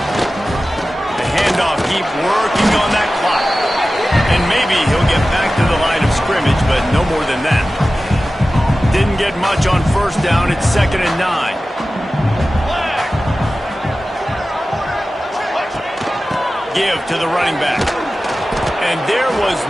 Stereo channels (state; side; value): normal; both; correlation 0.95